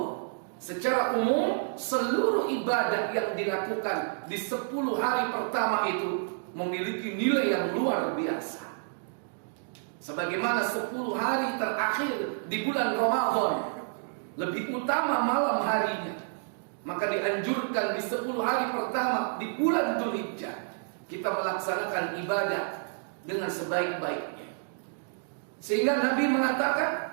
Secara umum seluruh ibadah yang dilakukan di 10 hari pertama itu memiliki nilai yang luar biasa. Sebagaimana 10 hari terakhir di bulan Ramadan lebih utama malam harinya, maka dianjurkan di 10 hari pertama di bulan Dzulhijjah kita melaksanakan ibadah dengan sebaik-baiknya. Sehingga Nabi mengatakan,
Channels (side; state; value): left; silent; digital silence